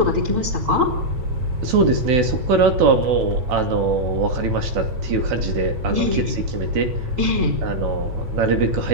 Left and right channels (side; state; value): left; late; 9.0 ms